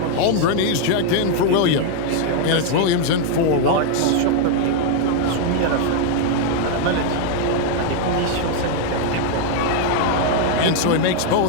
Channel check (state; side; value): different; both; correlation 0.00